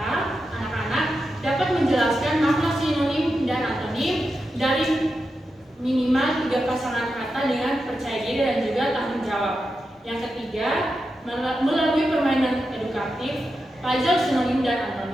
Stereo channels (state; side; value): normal; both; correlation 0.89